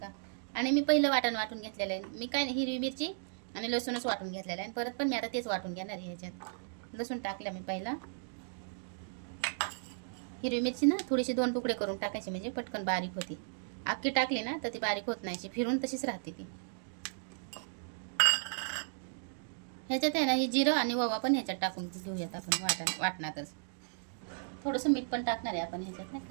आणि मी पहिलं वाटण वाटून घेतलेलं आहे. मी काय नाही, हिरवी मिरची आणि लसूणच वाटून घेतलेलं आहे. आणि परत पण मी आता तेच वाटून घेणार आहे. ह्याच्यात लसूण टाकलं मी पहिला. हिरवी मिरची ना थोडीशी 2 तुकडे करून टाकायची म्हणजे पटकन बारीक होती. अख्खी टाकली ना तर ती बारीक होत नाही, फिरून तशीच राहते ती. ह्याच्यात आहे ना ही जिरं आणि ओवा पण ह्याच्यात टाकून घेऊयात आपण वाटणातच. थोडंसं मीठ पण टाकणार आहे आपण ह्याच्यात नाही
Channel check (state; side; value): silent; left; digital silence